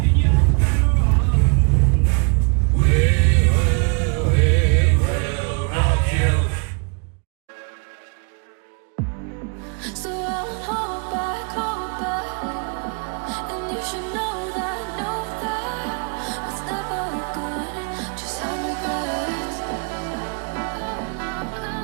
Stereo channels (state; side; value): quieter; left; 36.3 dB